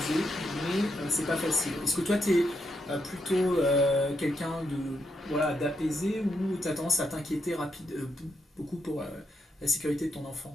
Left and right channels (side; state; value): both; normal; correlation 0.81